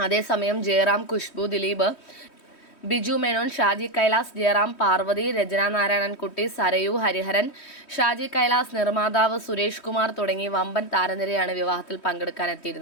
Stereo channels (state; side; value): late; right; 3.1 ms